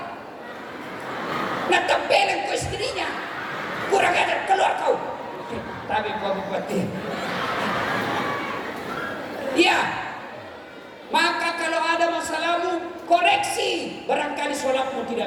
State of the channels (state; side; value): identical; both; correlation 1.00